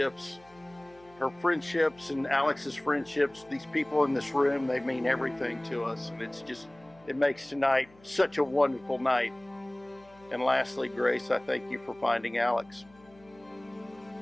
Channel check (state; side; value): noise; left; hum, 27 dB below the sound